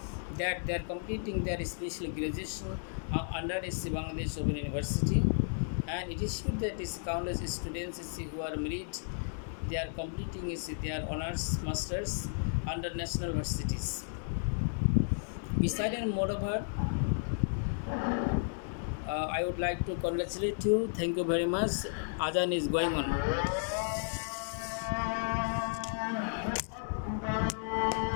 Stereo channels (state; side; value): silent; right; digital silence